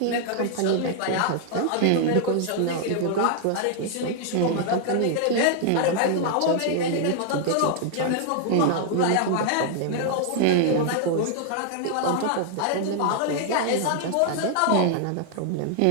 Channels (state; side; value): different; both; correlation 0.00